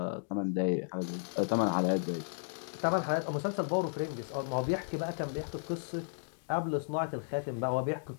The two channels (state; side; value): silent; right; digital silence